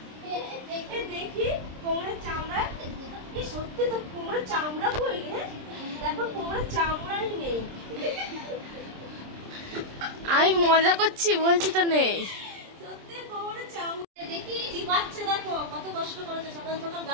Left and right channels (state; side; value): late; left; 26 ms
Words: দেখি কোমরের চামড়া, কি সত্যি তো কোমরের চামড়া কই রে? দেখো কোমরের চামড়াই নেই। আমি মজা করছি, বলছি তো নেই। সত্যি কোমরের চামড়া দেখি টিপাচ্ছে। দেখো কত কষ্ট করেছে, সকাল সকাল